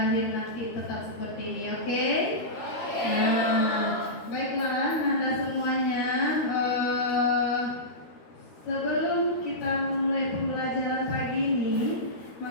nanti tetap seperti ini, oke? Nah, baiklah Ananda semuanya. Sebelum kita mulai pembelajaran pagi ini,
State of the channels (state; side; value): late; right; 13 ms